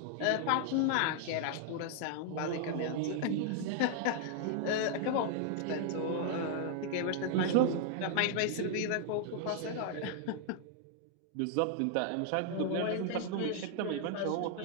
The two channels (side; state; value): both; different; correlation 0.00